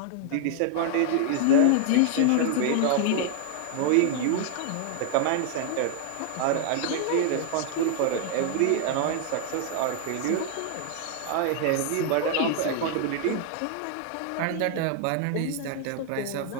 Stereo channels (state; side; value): different; both; correlation -0.01